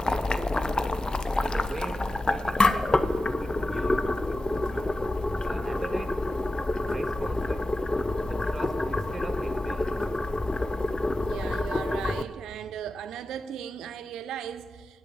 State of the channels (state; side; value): normal; both; correlation 0.93